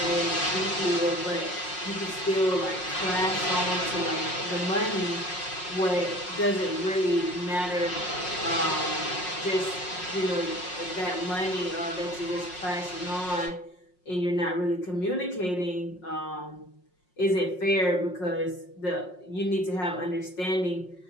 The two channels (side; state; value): right; late; 5.5 ms